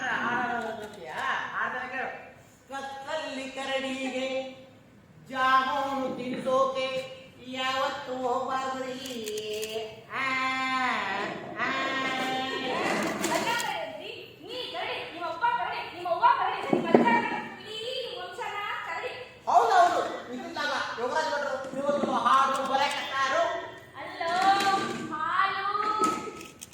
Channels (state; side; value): identical; both; correlation 1.00